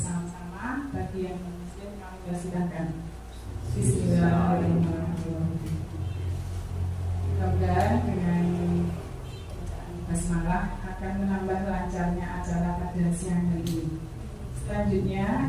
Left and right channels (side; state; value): both; identical; correlation 1.00